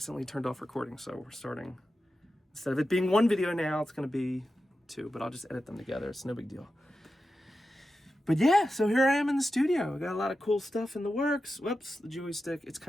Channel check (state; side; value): normal; both; correlation 0.91